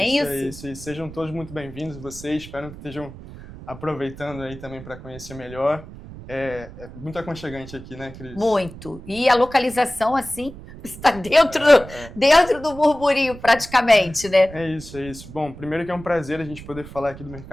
é isso? Isso. E sejam todos muito bem-vindos, vocês. Espero que estejam aproveitando aí também para conhecer melhor. É muito aconchegante aqui, né, Cris? Muito. E a localização, assim, está dentro do burburinho, praticamente, né? É isso. Bom, primeiro que é um prazer a gente poder falar aqui do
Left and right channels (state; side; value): noise; right; rumble, 15 dB below the sound